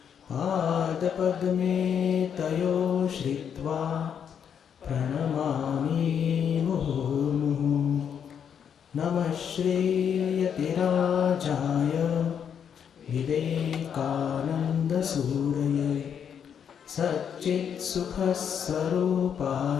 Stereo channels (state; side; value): quieter; right; 8.0 dB